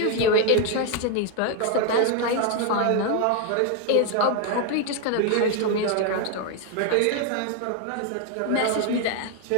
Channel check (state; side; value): different; both; correlation 0.01